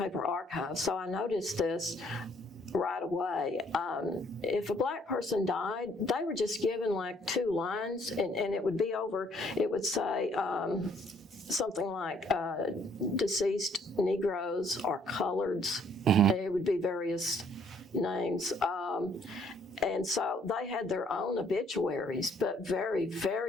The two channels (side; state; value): both; normal; correlation 0.64